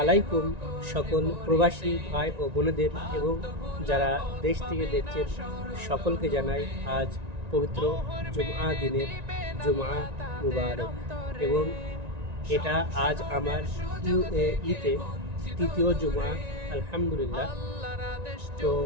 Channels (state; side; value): late; left; 1.9 ms